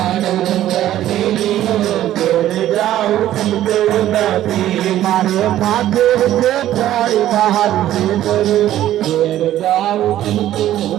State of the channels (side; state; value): left; quieter; 13.0 dB